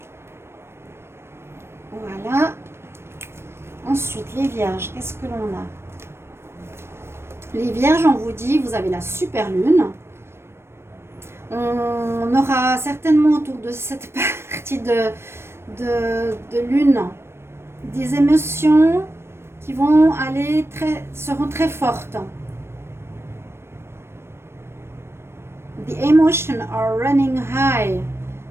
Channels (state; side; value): late; left; 0.12 ms